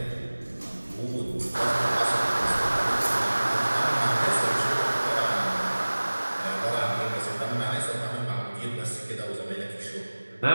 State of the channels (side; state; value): both; inverted; correlation -1.00